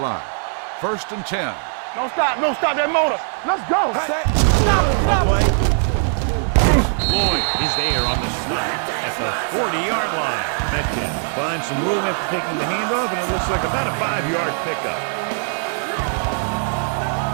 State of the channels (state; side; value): silent; left; 65 dB below the other